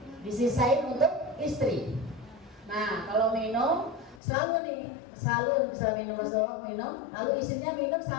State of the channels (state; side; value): drops out; right; at 4.2 s